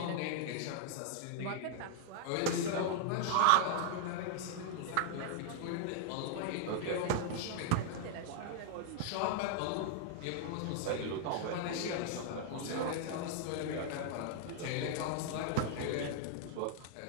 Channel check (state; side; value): different; both; correlation 0.00